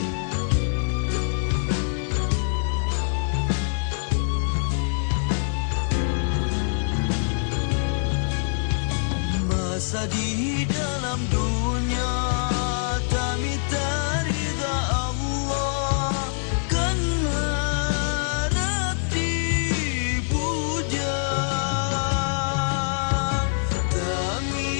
Masa di dalam dunia kami tak ridha Allah kan harap dipuja kami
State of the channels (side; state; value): right; silent; digital silence